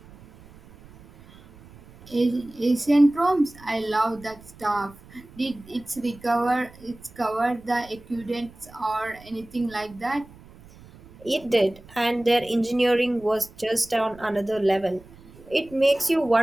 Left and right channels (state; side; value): noise; right; rumble, 22 dB below the sound